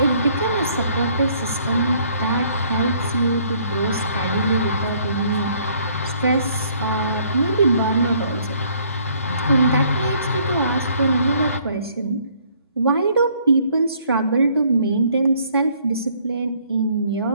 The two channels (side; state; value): both; inverted; correlation -0.63